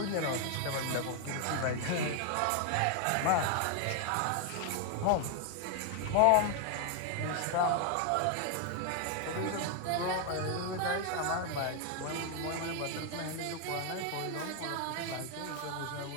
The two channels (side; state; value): both; different; correlation 0.00